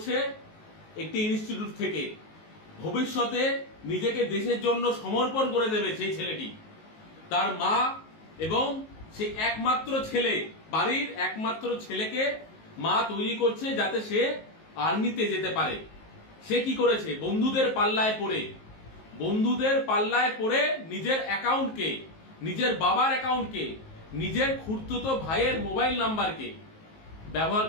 একটি ইনস্টিটিউট থেকে। ভবিষ্যতে নিজেকে দেশের জন্য সমর্পণ করে দেবে সেই ছেলেটি। তার মা এবং সেই একমাত্র ছেলে, বাড়ির একমাত্র ছেলেকে মা তৈরি করছে যাতে সে আর্মিতে যেতে পারে। সে কি করেছে? বন্ধুদের পাল্লায় পড়ে নিজের অ্যাকাউন্টকে, নিজের বাবার অ্যাকাউন্টকে, নিজের খুড়তুতো ভাইয়ের মোবাইল নাম্বারকে ব্যবহার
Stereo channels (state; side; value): late; right; 19 ms